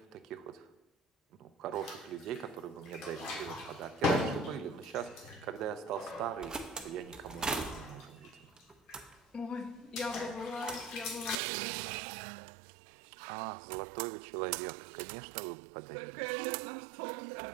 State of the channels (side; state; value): left; drops out; at 11.4 s